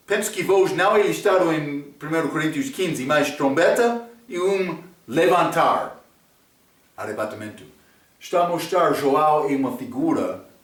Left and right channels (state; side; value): identical; both; correlation 1.00